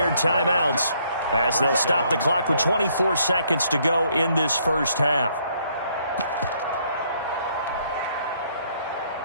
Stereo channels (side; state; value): both; inverted; correlation -0.68